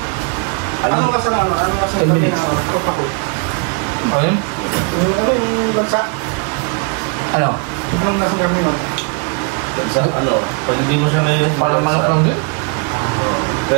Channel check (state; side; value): quieter; left; 33.7 dB